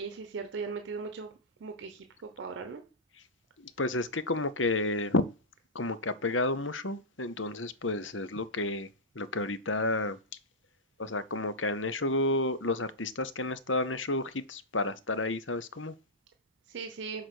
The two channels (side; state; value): both; normal; correlation -0.10